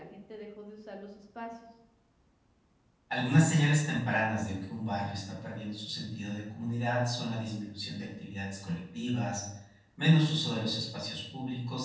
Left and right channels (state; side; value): identical; both; correlation 1.00